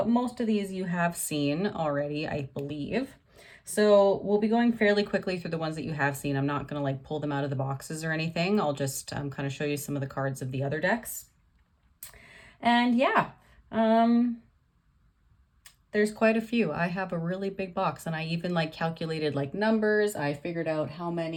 most of these you have seen already, I believe. So we'll be going fairly quickly through the ones that you have seen. I'm not going to like pull them out of the boxes or anything. I'll just kind of show you some of the cards of the other decks. And yeah, there's quite a few. I have a really big box, and I even like calculated like numbers. I figured out how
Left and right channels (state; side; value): identical; both; correlation 1.00